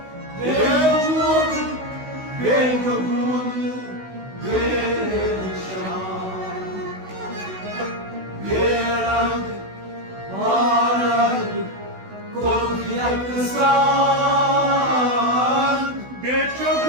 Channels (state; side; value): late; left; 16 ms